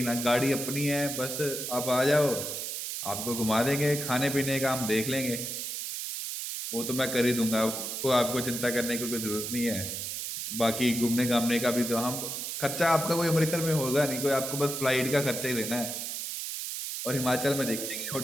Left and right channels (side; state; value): right; noise; hiss, 4 dB below the sound